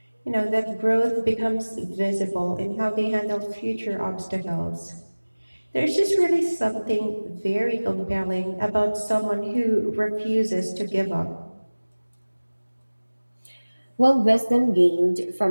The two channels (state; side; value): inverted; both; correlation -1.00